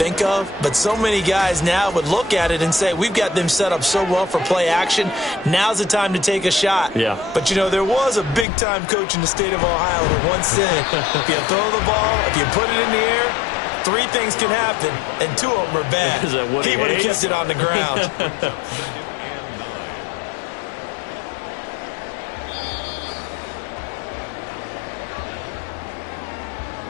of, but so many guys now would look at it and say, we've got them set up so well for play action. Now's the time to take a shot. Yeah. But, you know, there was a big-time coach in the state of Ohio who once said, if you throw the ball, if you put it in the air, 3 things can happen, and 2 of them are bad. Is that what he would have hates? kept it on the ground.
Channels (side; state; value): right; drops out; at 8.5 s